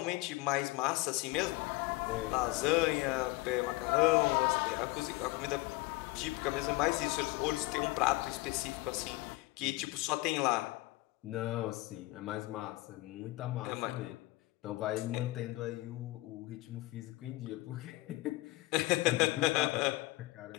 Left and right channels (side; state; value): right; quieter; 20.8 dB